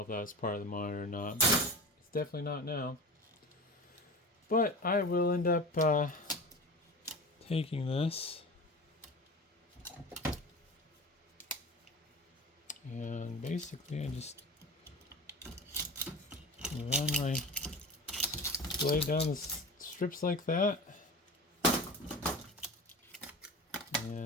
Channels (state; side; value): normal; both; correlation 0.32